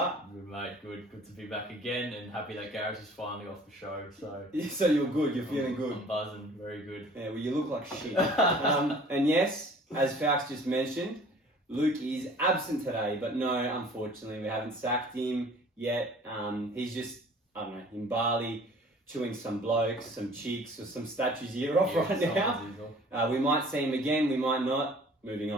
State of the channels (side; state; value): both; normal; correlation 0.50